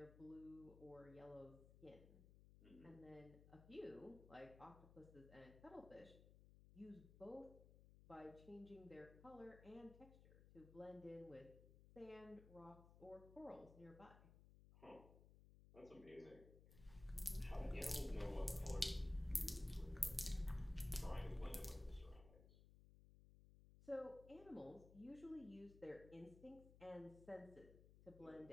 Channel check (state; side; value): noise; left; hum, 17 dB below the sound